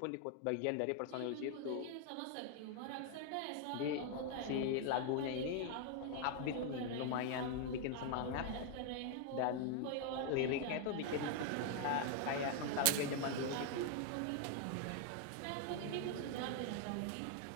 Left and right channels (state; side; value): different; both; correlation 0.00